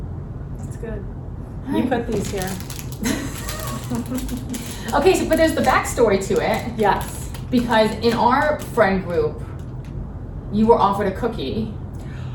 That's good. All You right. put these here. Okay, but there's the backstory to it. Yes. Because in our friend group, you were offered a cookie.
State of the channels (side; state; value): both; identical; correlation 1.00